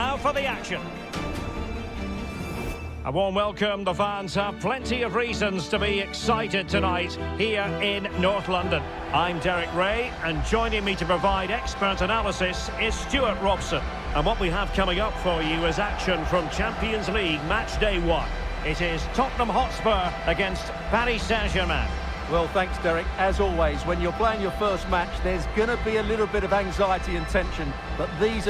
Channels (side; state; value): both; identical; correlation 1.00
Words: for the action. A warm welcome. The fans have plenty of reasons to be excited tonight here in North London. I'm Derek Ray, and joining me to provide expert analysis is Stuart Robson. And what we have coming up for you is action from Champions League match day 1. It is Tottenham Hotspur against Paris Saint-Germain. Well, thanks, Derek. As always, when you're playing your first match, there's going to be a little bit of anxiety and tension. But these